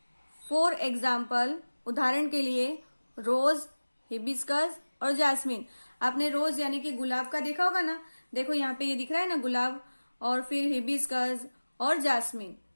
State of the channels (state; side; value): inverted; both; correlation -1.00